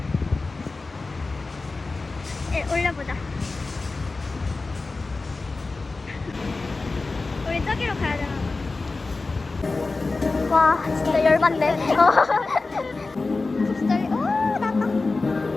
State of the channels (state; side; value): quieter; right; 3.7 dB